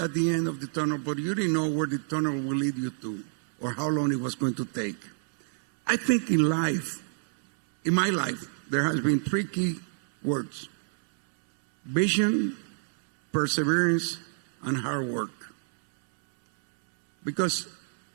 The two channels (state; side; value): silent; left; 59 dB below the other